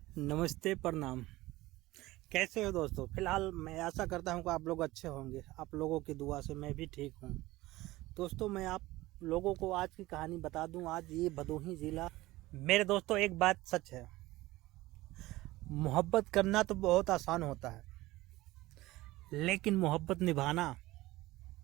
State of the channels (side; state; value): left; quieter; 18.4 dB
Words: नमस्ते, प्रणाम। कैसे हो दोस्तों? फिलहाल मैं आशा करता हूँ कि आप लोग अच्छे होंगे। आप लोगों की दुआ से मैं भी ठीक हूँ। दोस्तों, मैं आप लोगों को आज की कहानी बता दूँ। आज ये भदोही ज़िला। मेरे दोस्तों, एक बात सच है, मोहब्बत करना तो बहुत आसान होता है, लेकिन मोहब्बत निभाना